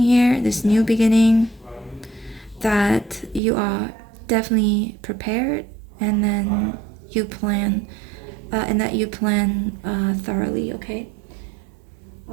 here, this new beginning, that you are definitely prepared, and then you plan, thoroughly, okay?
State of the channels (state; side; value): drops out; left; at 3.4 s